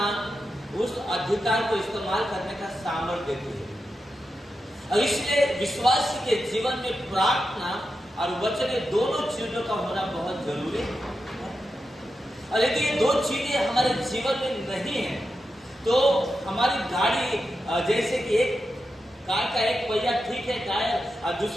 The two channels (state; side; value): normal; both; correlation 0.89